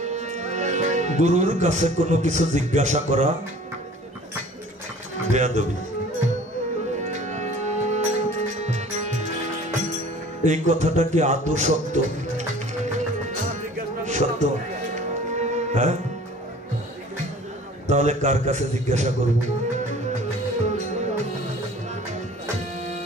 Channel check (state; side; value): normal; both; correlation 0.48